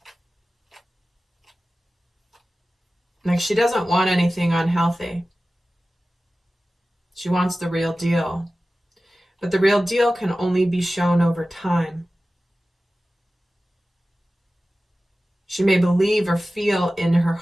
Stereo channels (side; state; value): both; normal; correlation 0.96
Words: Like, she doesn't want anything unhealthy. She wants the real deal. But the real deal can only be shown over time. She may believe or feel in her